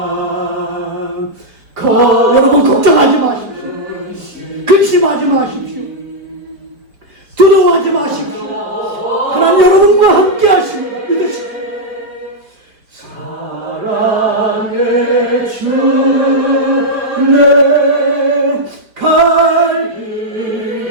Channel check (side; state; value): left; late; 4.3 ms